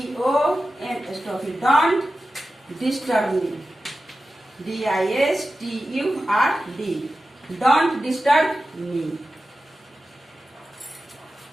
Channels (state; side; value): normal; both; correlation 0.93